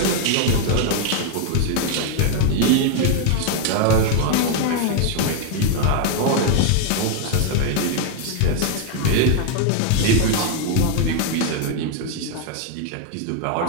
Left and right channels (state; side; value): different; both; correlation 0.00